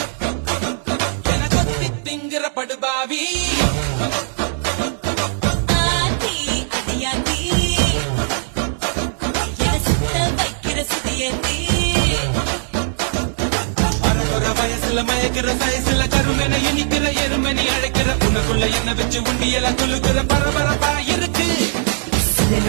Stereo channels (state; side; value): silent; left; digital silence